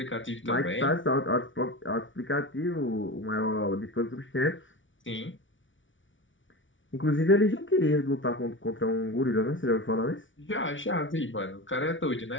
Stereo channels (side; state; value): right; late; 0.56 ms